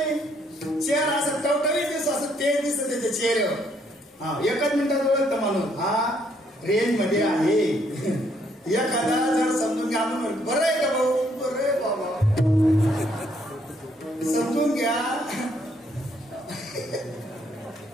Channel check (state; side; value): normal; both; correlation 0.70